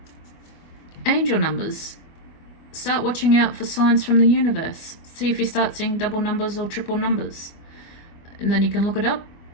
angel numbers. Start watching out for signs from the universe. See if you start seeing double numbers or triple numbers. And then you can look it up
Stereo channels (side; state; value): right; late; 25 ms